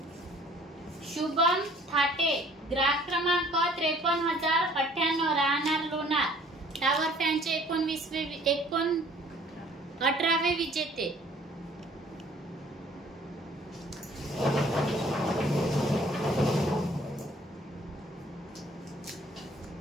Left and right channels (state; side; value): normal; both; correlation 0.56